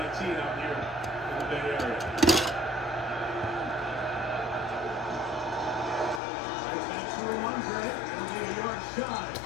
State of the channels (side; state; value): right; drops out; at 6.2 s